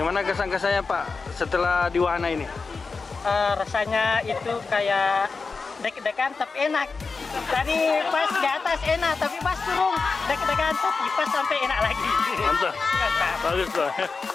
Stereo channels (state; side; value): quieter; right; 4.5 dB